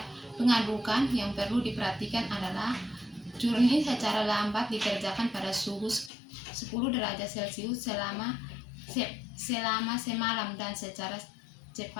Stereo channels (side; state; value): right; drops out; at 6.1 s